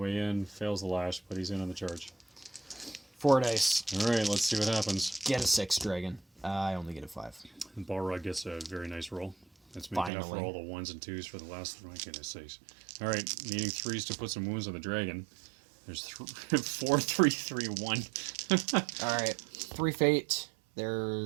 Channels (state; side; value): drops out; left; at 10.1 s